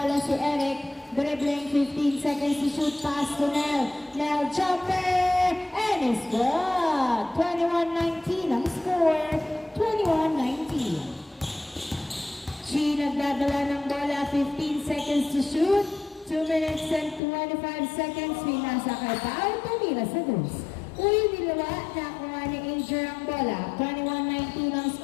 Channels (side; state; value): right; drops out; at 17.2 s